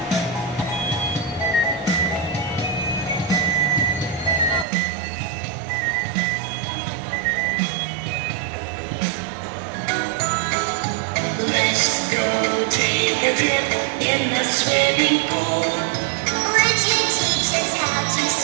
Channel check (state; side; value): drops out; left; at 4.7 s